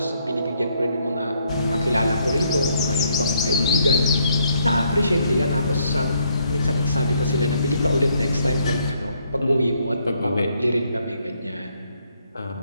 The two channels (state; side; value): inverted; both; correlation -0.71